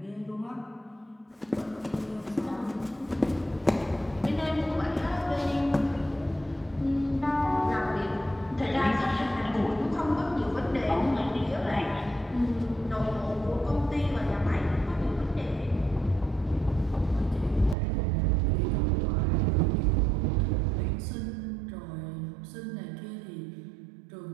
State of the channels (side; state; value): left; drops out; at 17.8 s